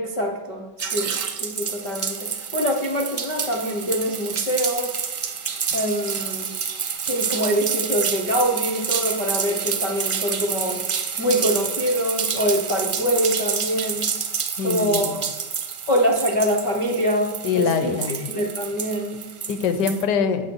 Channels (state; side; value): late; right; 5.2 ms